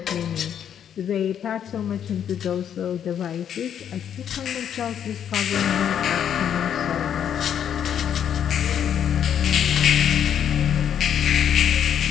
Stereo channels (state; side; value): quieter; right; 9.1 dB